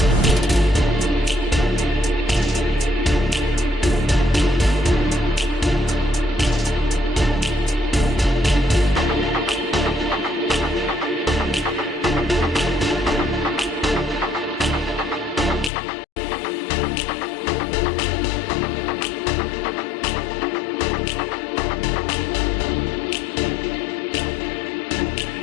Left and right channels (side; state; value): right; drops out; at 15.7 s